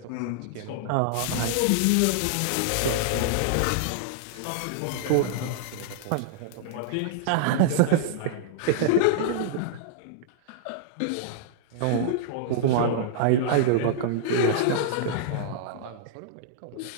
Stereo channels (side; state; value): both; different; correlation -0.01